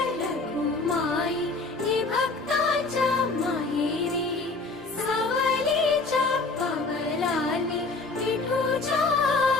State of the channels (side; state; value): right; quieter; 3.6 dB